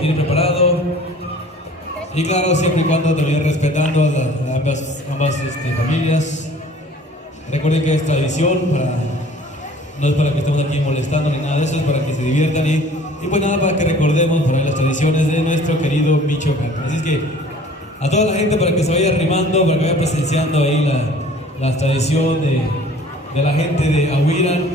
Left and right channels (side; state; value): both; normal; correlation 0.50